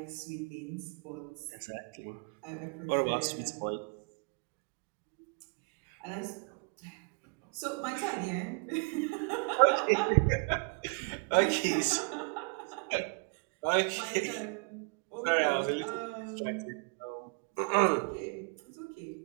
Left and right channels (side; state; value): left; quieter; 36.2 dB